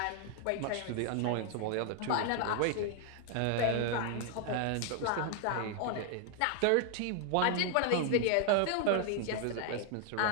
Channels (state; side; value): different; both; correlation 0.00